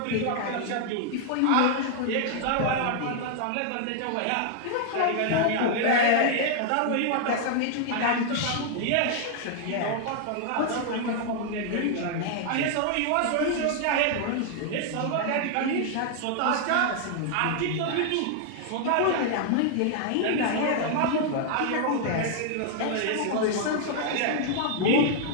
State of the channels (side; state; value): both; different; correlation 0.00